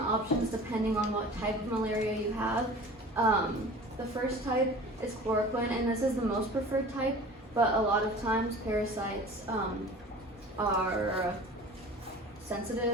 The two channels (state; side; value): normal; both; correlation 0.41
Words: options depending on what type of malaria you have. The first type is chloroquine, and this is the most preferred type, but a lot of times parasites are